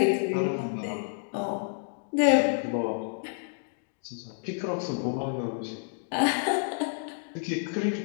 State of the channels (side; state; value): right; silent; 58 dB below the other